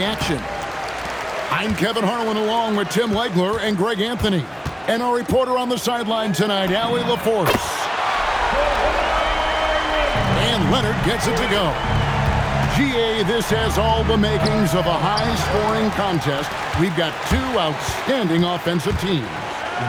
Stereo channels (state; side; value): identical; both; correlation 1.00